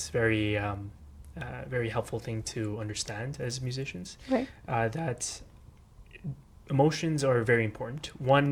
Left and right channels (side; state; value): both; identical; correlation 1.00